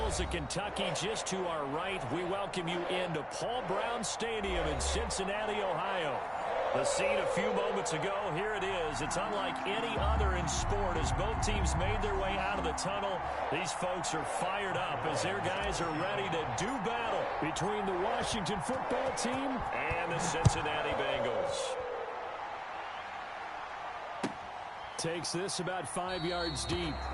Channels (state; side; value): identical; both; correlation 1.00